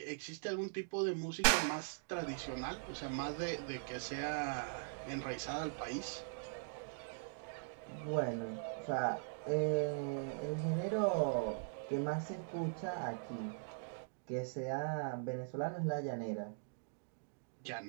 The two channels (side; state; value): left; silent; digital silence